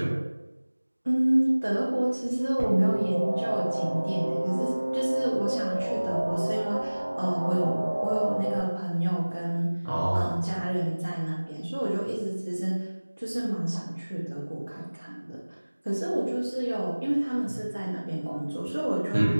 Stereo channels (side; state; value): both; inverted; correlation -1.00